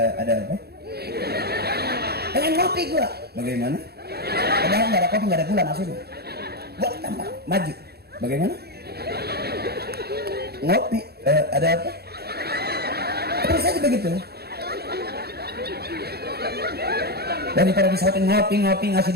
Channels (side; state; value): left; late; 0.46 ms